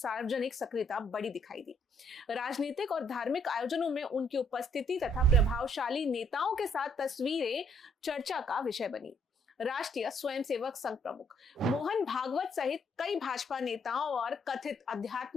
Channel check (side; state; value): both; normal; correlation 0.69